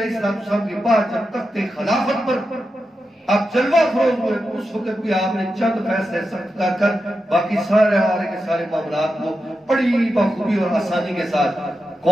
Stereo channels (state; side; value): normal; both; correlation 0.89